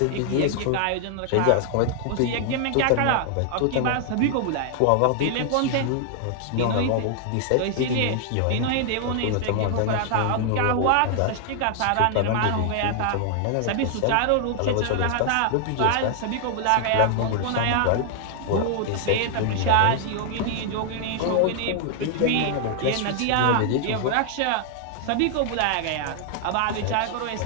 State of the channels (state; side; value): different; both; correlation 0.00